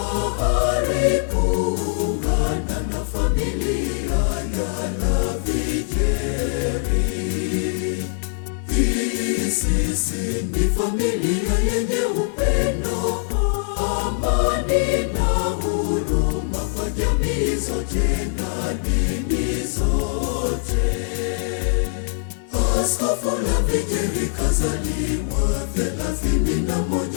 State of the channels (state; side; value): silent; right; digital silence